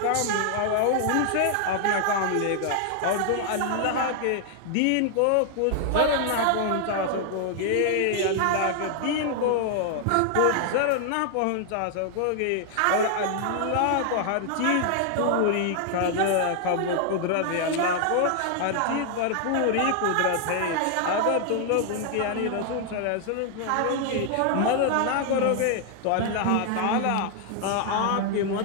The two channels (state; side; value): different; both; correlation 0.00